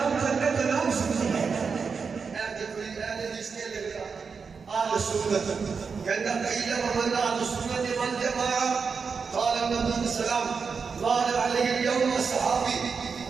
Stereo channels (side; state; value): left; quieter; 5.4 dB